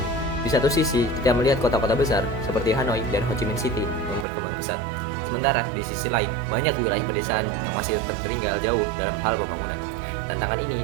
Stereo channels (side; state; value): left; drops out; at 4.2 s